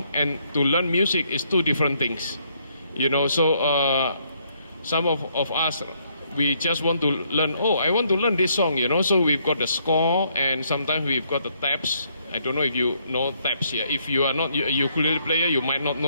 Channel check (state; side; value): inverted; both; correlation -0.71